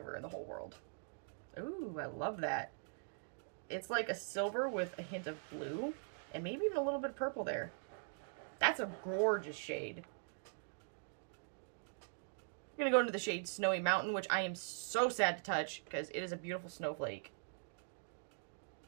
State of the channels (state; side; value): silent; left; digital silence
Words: in the whole world. Ooh, I love that. It's like a silver with a hint of blue and maybe even a little bit of purple there. That's a gorgeous shade. I'm going to go into the shade Snowy Mountain, which I am so sad to touch because it is a beautiful snowflake.